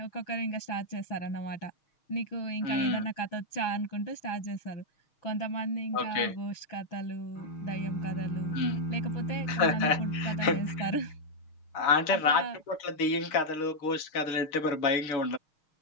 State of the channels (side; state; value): right; late; 6.4 ms